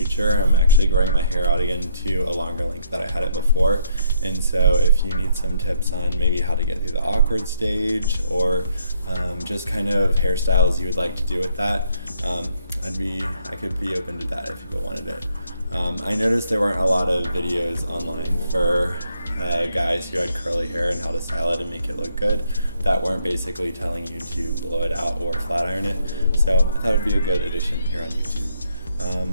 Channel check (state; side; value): inverted; both; correlation -0.70